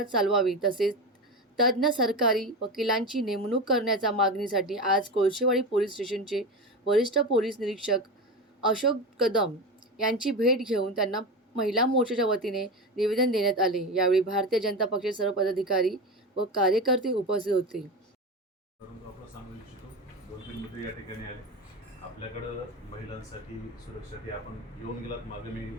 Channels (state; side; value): normal; both; correlation 0.22